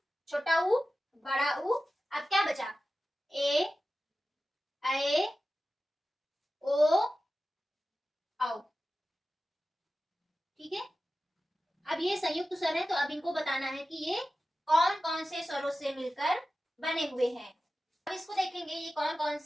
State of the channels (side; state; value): both; normal; correlation 0.94